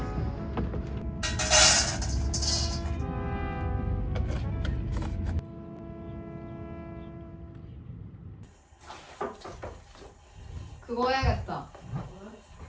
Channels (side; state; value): both; identical; correlation 1.00